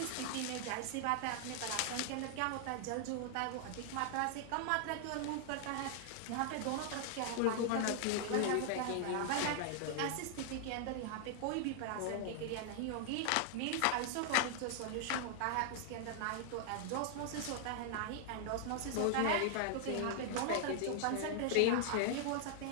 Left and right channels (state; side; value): different; both; correlation 0.00